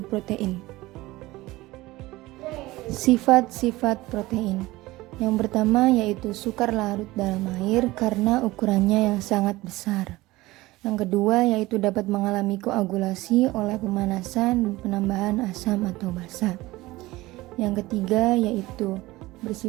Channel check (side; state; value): left; quieter; 19.1 dB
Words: protein. Sifat-sifat protein. Yang pertama yaitu sukar larut dalam air karena ukurannya yang sangat besar. Yang kedua yaitu dapat mengalami koagulasi oleh pemanasan dan penambahan asam atau basa. Yang ketiga yaitu